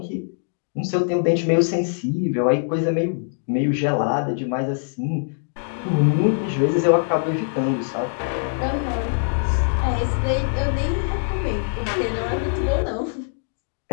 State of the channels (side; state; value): right; silent; digital silence